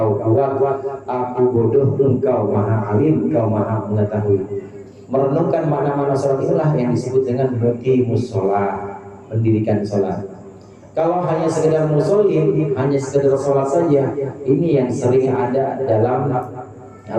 kuat. Aku bodoh, Engkau maha alim, Engkau maha mengetahui. Merenungkan mana-mana sholat itulah yang disebut dengan muqimus sholat, mendirikan sholat. Kalau hanya sekedar musholin, hanya sekedar sholat saja, ini yang sering ada dalam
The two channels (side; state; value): both; identical; correlation 1.00